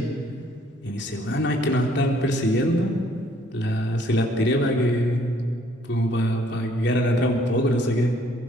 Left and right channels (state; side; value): normal; both; correlation 0.63